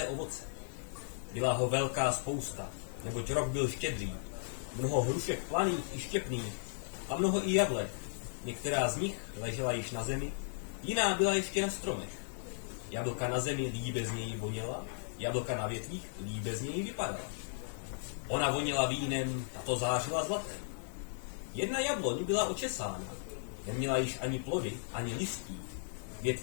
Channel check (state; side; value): silent; right; 54 dB below the other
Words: ovoce. Byla ho velká spousta, neboť rok byl štědrý, mnoho hrušek planých i štěpných a mnoho i jablek. Některá z nich ležela již na zemi, jiná byla ještě na stromech. Jablka na zemi líbe z něj voněla, jablka na větvích líbe z něj vypadala. Ona voněla vínem, tato zářila zlatem. Jedna jabloň byla očesána, neměla již ani plody, ani listí.